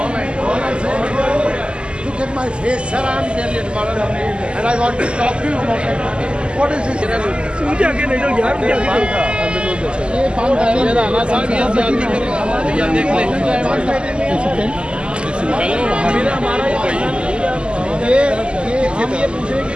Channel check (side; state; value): left; late; 0.051 ms